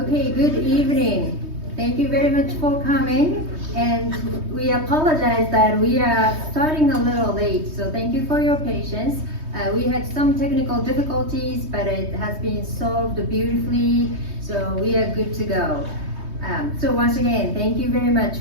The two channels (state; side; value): late; left; 3.2 ms